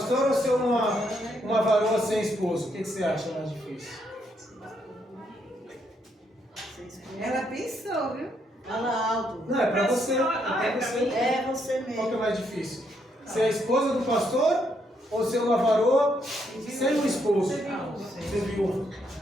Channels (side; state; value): both; normal; correlation 0.75